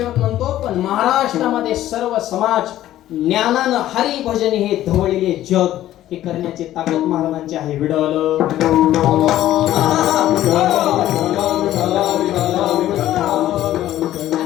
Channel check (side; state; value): right; quieter; 13.4 dB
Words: म्हणतो, पण महाराष्ट्रामध्ये सर्व समाज ज्ञानानं हरिभजनी हे धवळलेले जग हे करण्याची ताकद महाराजांची आहे. विडवलं